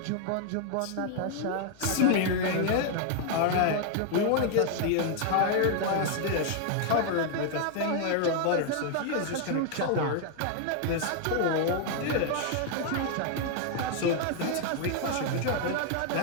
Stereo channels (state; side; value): different; both; correlation 0.00